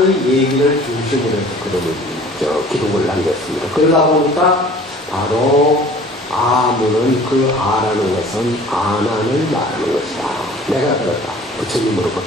얘기를 중심으로 해서 기록을 남겼습니다. 그러다 보니까 바로 아문은 그 아라는 것은 아난을 말하는 것이다. 내가 들었다.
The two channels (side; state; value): both; normal; correlation 0.48